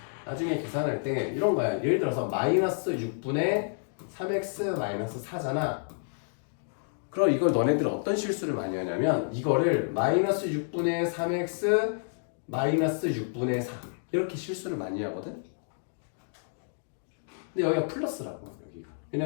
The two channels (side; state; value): right; silent; digital silence